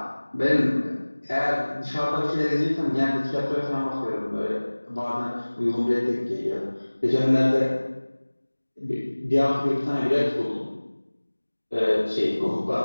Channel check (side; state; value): both; inverted; correlation -1.00